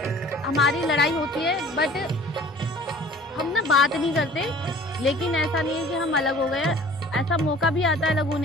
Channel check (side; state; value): both; normal; correlation 0.49